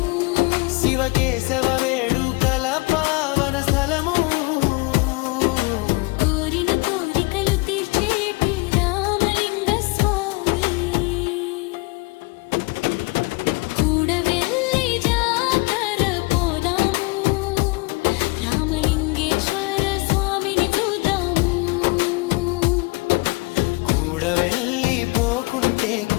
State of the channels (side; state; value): right; quieter; 25.9 dB